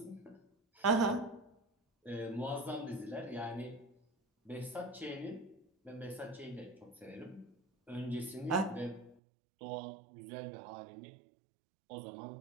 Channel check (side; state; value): left; drops out; at 9.2 s